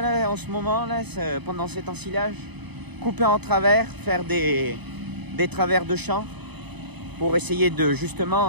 là, en ce moment, là, pendant cet ensilage. Couper en travers, faire des travers de champ pour essayer de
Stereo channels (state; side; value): late; left; 0.99 ms